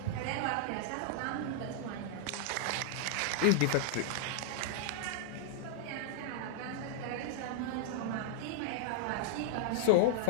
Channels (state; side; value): different; both; correlation -0.01